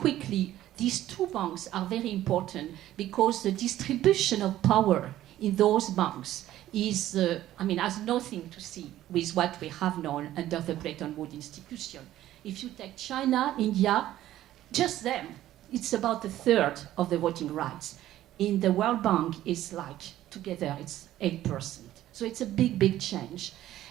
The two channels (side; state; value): left; quieter; 13.6 dB